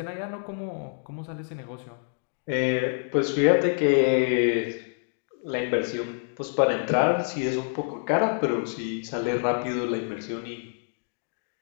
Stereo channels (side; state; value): right; silent; 60 dB below the other